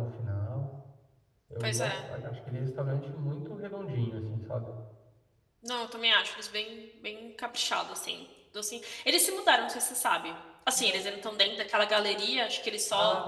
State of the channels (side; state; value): both; identical; correlation 1.00